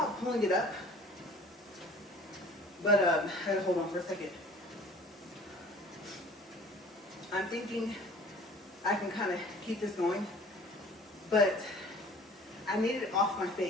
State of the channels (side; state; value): both; normal; correlation 0.48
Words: pulling it up, but I gotta hold on for a second. I'm thinking I can kind of keep this going, but I need it off my